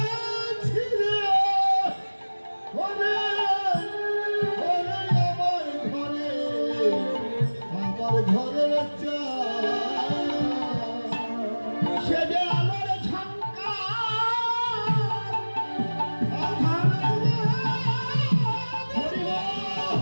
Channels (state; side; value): inverted; both; correlation -1.00